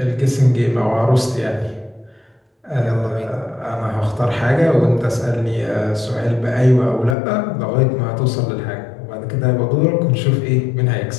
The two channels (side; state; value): right; drops out; at 7.2 s